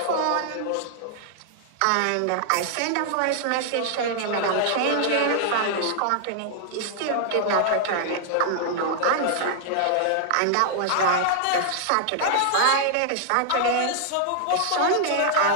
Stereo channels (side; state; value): both; different; correlation -0.01